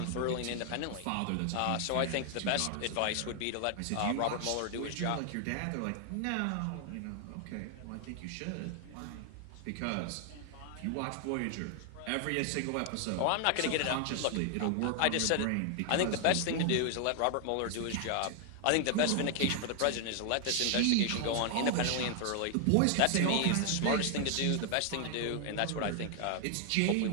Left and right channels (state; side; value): different; both; correlation 0.00